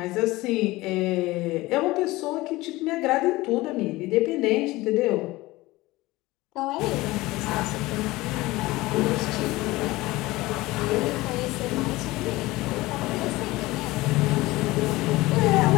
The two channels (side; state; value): right; quieter; 19.7 dB